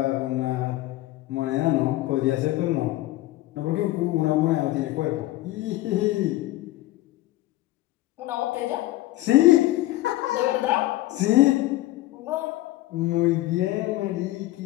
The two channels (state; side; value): quieter; right; 17.0 dB